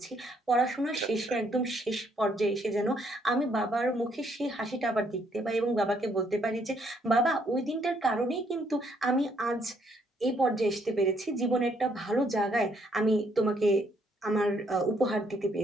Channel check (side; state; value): both; normal; correlation 0.70